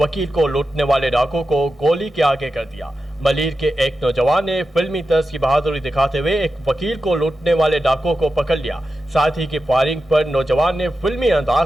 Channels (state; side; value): normal; both; correlation 0.91